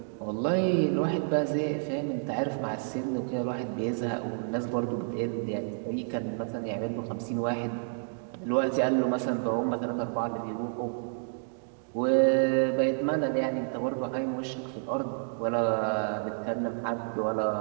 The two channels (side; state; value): left; silent; digital silence